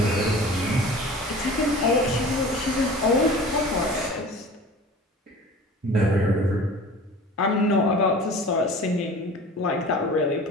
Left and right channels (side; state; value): both; normal; correlation 0.41